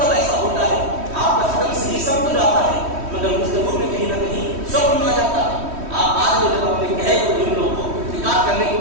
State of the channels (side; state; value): left; late; 3.1 ms